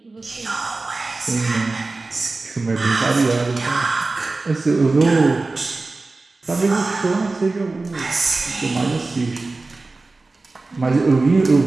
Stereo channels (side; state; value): left; quieter; 3.5 dB